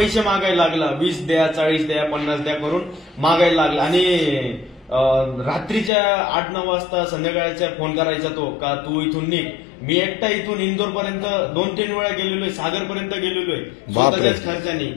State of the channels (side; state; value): right; drops out; at 5.9 s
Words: मागायला लागला, 20 द्या, 40 द्या, 50 द्या करून मागायला लागला. आणि रात्रीच्या 8-9 वाजता संध्याकाळच्या फोन करायचा तो, का तू इथून निघ. मी एकटा इथून इंदोर पर्यंत 2-3 वेळा गेलेलोय, सागर पर्यंत गेलेलोय स्वतःच्याच खर्चाने.